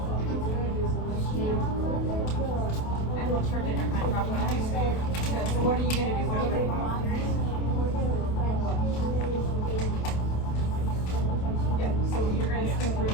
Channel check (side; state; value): right; late; 28 ms